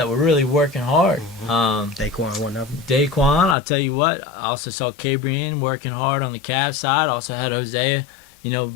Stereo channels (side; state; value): right; drops out; at 3.6 s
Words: were really working hard. Daquan, one of them. Daquan, I'll tell you what, I also saw Cabrian working hard on the Cavs side. Also had Hosea,